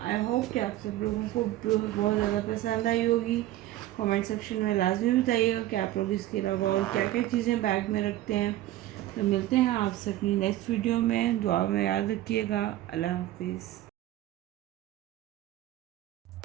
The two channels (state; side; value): quieter; left; 14.7 dB